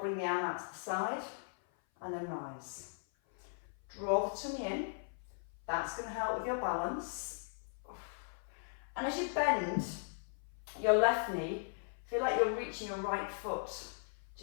the arm out to the side and then rise. Draw the tummy in. That's going to help with your balance. And as you bend your left knee, feel like you're reaching your right foot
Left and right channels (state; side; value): silent; right; 52 dB below the other